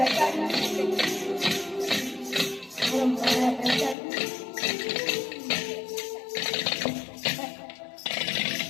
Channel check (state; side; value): drops out; right; at 4.0 s